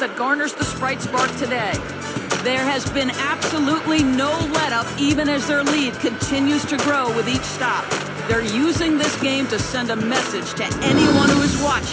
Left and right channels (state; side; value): identical; both; correlation 1.00